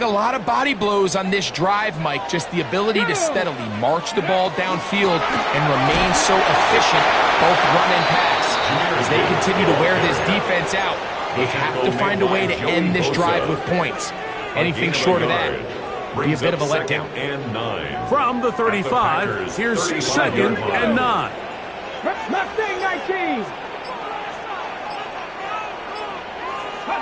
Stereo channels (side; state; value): both; identical; correlation 1.00